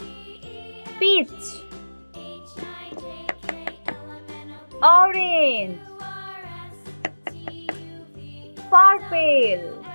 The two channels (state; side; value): inverted; both; correlation -1.00